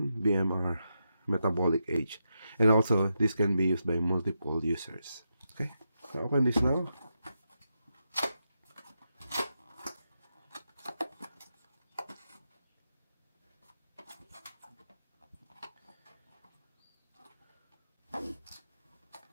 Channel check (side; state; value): both; inverted; correlation -0.85